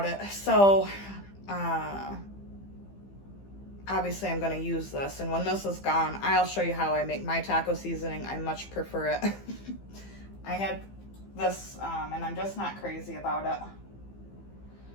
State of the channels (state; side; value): late; right; 15 ms